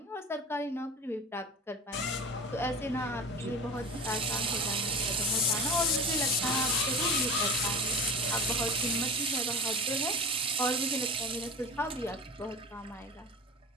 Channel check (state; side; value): normal; both; correlation 0.33